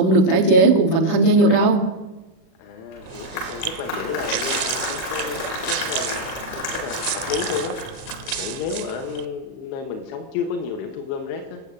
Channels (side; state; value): right; late; 37 ms